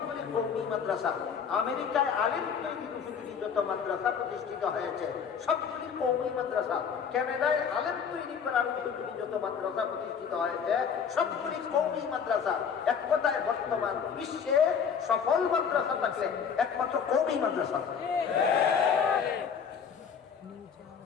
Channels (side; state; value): right; quieter; 6.9 dB